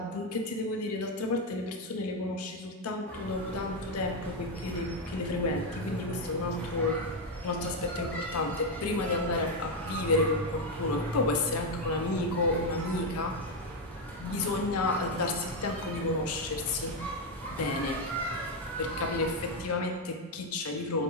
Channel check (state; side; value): normal; both; correlation 0.06